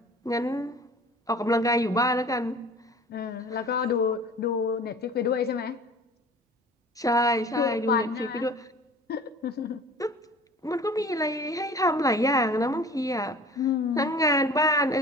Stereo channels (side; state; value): both; normal; correlation 0.44